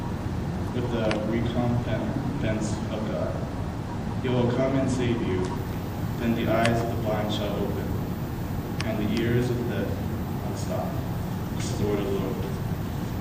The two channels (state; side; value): identical; both; correlation 1.00